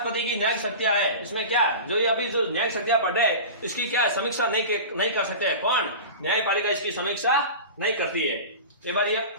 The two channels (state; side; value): inverted; both; correlation -0.32